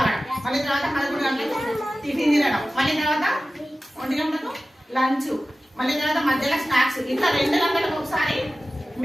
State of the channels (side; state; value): both; normal; correlation 0.96